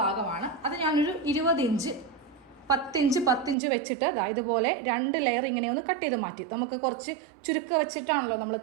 അത് ഞാനൊരു 20 ഇഞ്ച് 10 ഇഞ്ച് 10 ഇഞ്ച് വെച്ചിട്ട് ഇതുപോലെ 2 ലെയർ ഇങ്ങനെ ഒന്ന് കട്ട് ചെയ്ത് മാറ്റി. നമുക്ക് കുറച്ച് ചുരുക്കം വെച്ചിട്ടാണല്ലോ നമ്മൾ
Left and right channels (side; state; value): left; drops out; at 3.6 s